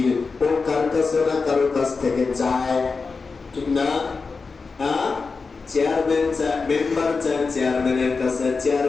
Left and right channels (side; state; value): right; quieter; 4.5 dB